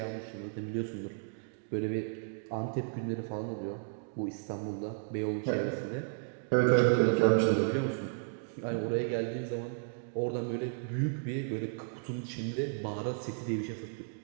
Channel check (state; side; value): silent; left; digital silence